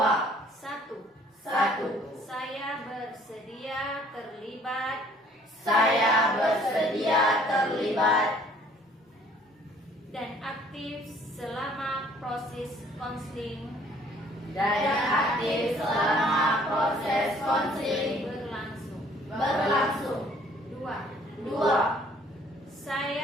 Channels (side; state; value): both; normal; correlation 0.58